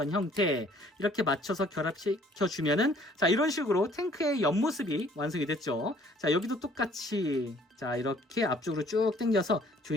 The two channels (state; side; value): normal; both; correlation 0.58